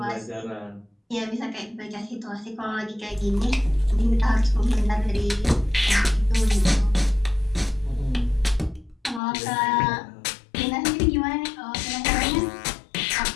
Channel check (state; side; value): drops out; right; at 9.2 s